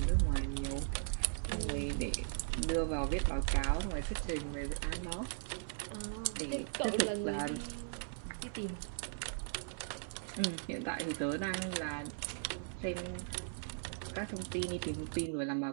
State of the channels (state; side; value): silent; left; digital silence